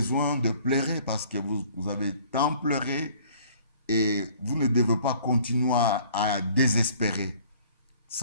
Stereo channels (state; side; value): inverted; both; correlation -0.55